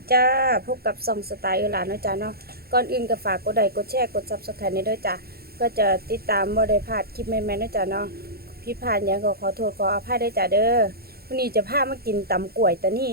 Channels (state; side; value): late; left; 0.45 ms